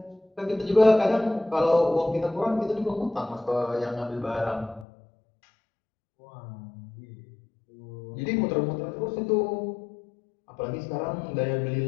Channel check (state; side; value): drops out; right; at 4.9 s